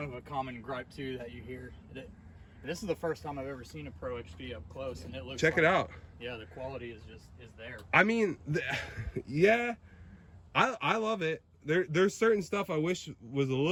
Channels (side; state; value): both; identical; correlation 1.00